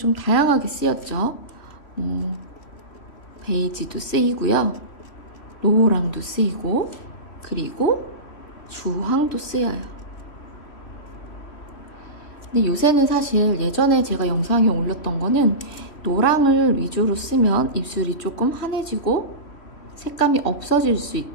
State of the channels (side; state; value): right; late; 3.1 ms